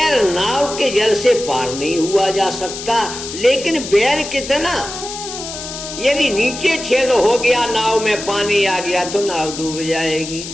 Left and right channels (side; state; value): left; noise; hiss, 9 dB below the sound